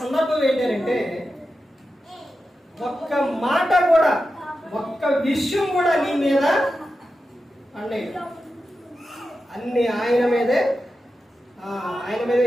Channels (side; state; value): both; normal; correlation 0.91